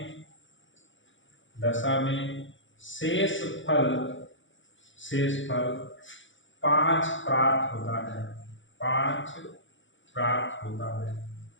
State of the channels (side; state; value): right; late; 0.56 ms